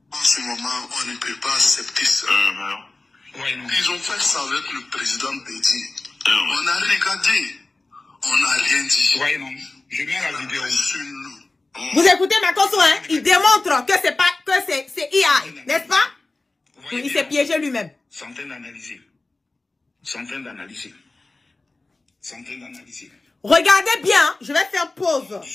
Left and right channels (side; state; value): right; quieter; 3.2 dB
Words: En ce moment, on ne peut pas accepter ça. Ouais, non. Ils ont fait ça avec le président Bédi. On a regardé. On n'a rien dit. Ouais, non. Je mets la vidéo. Vous écoutez Makosso, hein? Il démontre que c'est pas, que c'est IA, n'est-ce pas? Il s'est piégé lui-même. Centaines d'analyser. Centaines d'analyser. Centaines d'analyser. Regardez bien, hein. Je vais faire pause. Ne